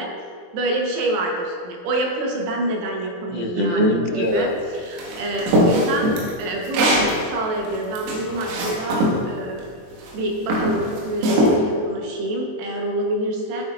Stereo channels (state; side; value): late; left; 23 ms